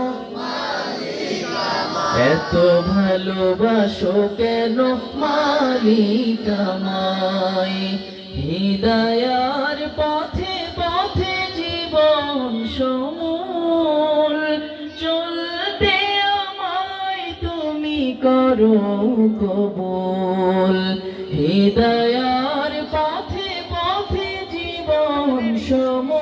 এত ভালোবাসো কেন মালিক আমায়। হিদায়ার পথে পথে জীবন সমূল চলতে আমায় তুমি করো কবুল, হিদায়ার পথে পথে জীবন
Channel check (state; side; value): identical; both; correlation 1.00